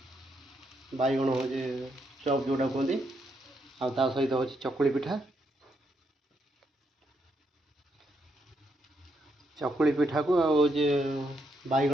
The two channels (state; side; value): normal; both; correlation 0.78